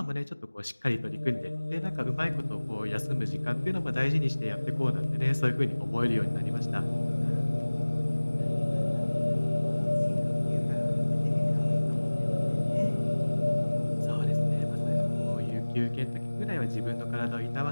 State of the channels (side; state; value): both; inverted; correlation -1.00